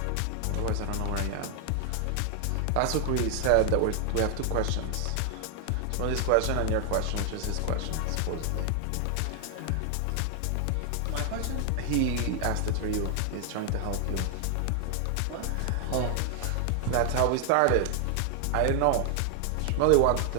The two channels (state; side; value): different; both; correlation 0.00